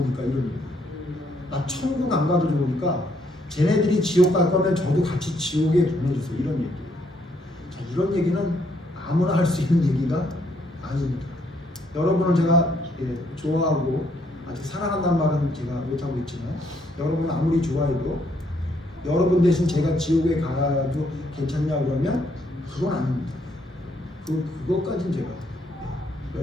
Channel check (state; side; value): normal; both; correlation 0.71